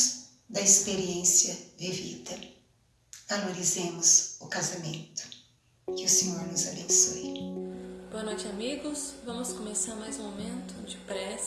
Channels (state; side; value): identical; both; correlation 1.00